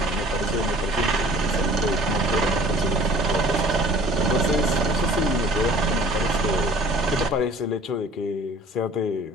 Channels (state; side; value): normal; both; correlation 0.51